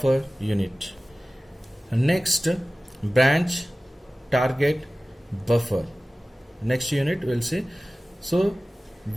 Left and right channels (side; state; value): both; normal; correlation 0.97